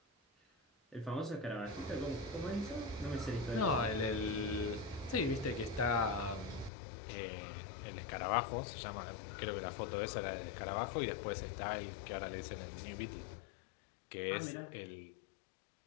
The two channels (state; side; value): drops out; right; at 6.7 s